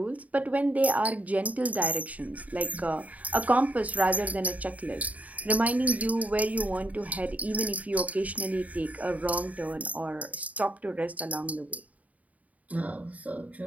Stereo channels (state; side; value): late; left; 0.071 ms